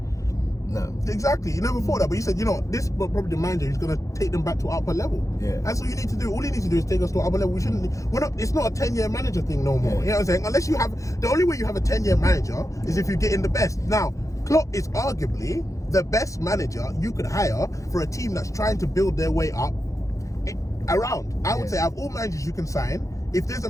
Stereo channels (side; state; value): right; late; 0.15 ms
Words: No. Exactly. You never thought that, but you said, you know, this is probably the manager who's going to take them back to upper level. Yeah. That's all you need to do. All you need to do is take us to upper level. It's not a 10-year manager thing no more. Yeah. You know what I'm saying? Unless you have, the only way you have a 10-year manager is if you get in the best. Now, Klopp is arguably the best manager you could hire for a team that's trying to build their way up around. I would say out of all managers you can sign, if there's a